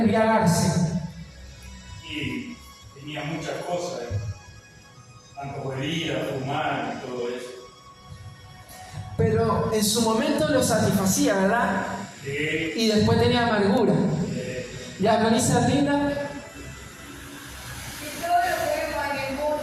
Y tenía muchas cosas, tanto bebida, fumar y todo eso. Pero en su momento lo satisfacía, ¿verdad? Sí. Y después tenía amargura. ¿Ya con esa linda? Y todo lo que vemos en el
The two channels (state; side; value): identical; both; correlation 1.00